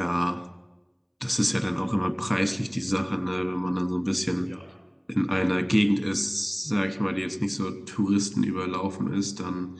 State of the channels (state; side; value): identical; both; correlation 1.00